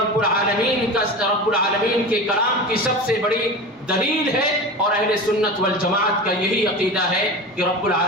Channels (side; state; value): both; normal; correlation 0.29